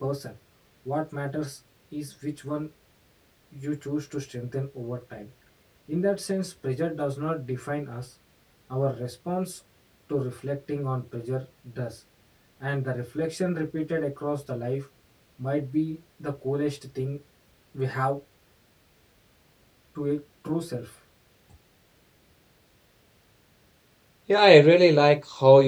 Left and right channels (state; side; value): identical; both; correlation 1.00